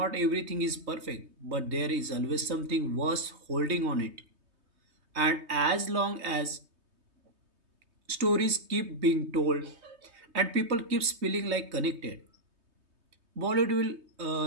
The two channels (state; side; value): late; left; 3.2 ms